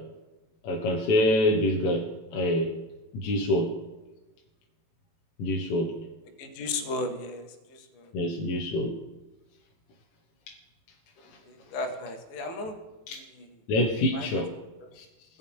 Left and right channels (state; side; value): late; right; 18 ms